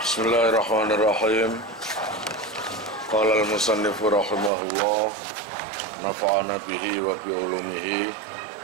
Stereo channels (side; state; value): left; drops out; at 4.5 s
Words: Bismillahirrahmanirrahim. Qala al-musannifu rahimahullah, nafa'ana bihi wa bi ulumihi